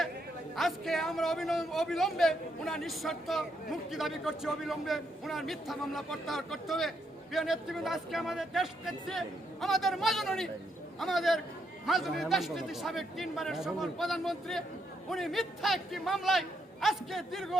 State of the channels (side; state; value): both; normal; correlation 0.77